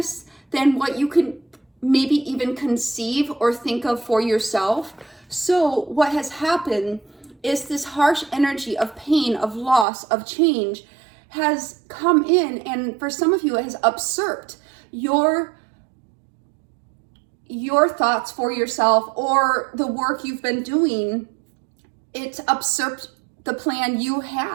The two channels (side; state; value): left; drops out; at 9.9 s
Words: than what you can maybe even conceive or think of for yourself. So what has happened is this harsh energy of pain, of loss, of change has come in, and for some of you it has usurped your thoughts for yourself or the work you've been doing. It's usurped the plan you